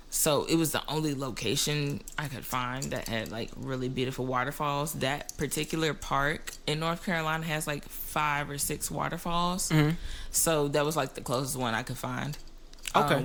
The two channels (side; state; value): both; identical; correlation 1.00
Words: So it was the only location I could find that had like really beautiful waterfalls. That particular park in North Carolina has like 5 or 6 waterfalls. So that was like the closest one I could find. Okay.